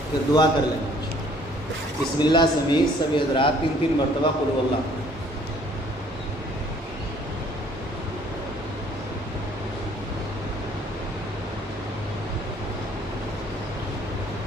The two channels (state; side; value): normal; both; correlation 0.59